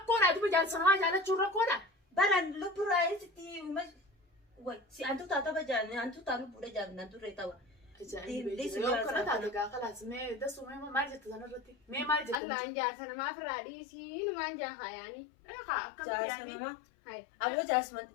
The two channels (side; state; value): right; drops out; at 12.4 s